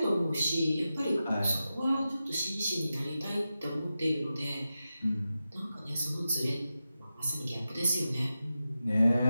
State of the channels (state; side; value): inverted; both; correlation -0.91